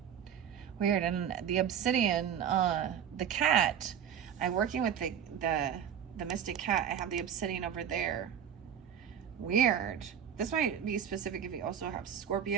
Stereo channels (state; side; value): quieter; left; 8.9 dB